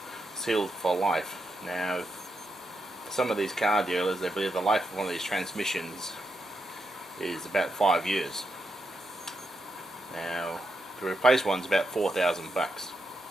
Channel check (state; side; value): normal; both; correlation 0.83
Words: sealed for life. Now, for some of these car dealers, they believe the life of one of these transmissions is about 5 years. Now, to replace one's about $4,000.